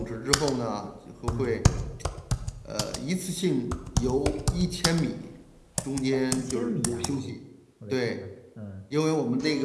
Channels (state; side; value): identical; both; correlation 1.00